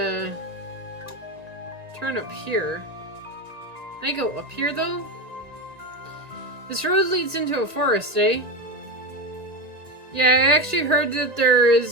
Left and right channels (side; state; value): left; late; 1.9 ms